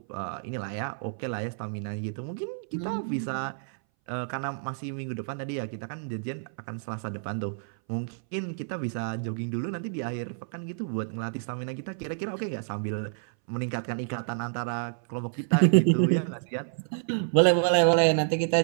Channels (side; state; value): left; silent; 59 dB below the other